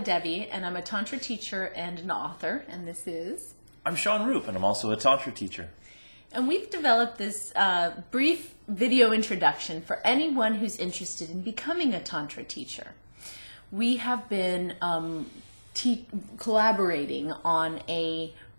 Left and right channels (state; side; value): inverted; both; correlation -1.00